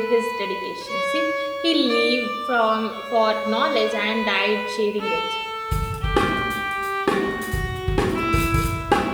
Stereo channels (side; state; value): both; identical; correlation 1.00